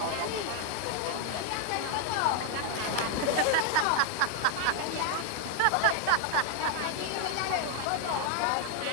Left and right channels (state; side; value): different; both; correlation 0.00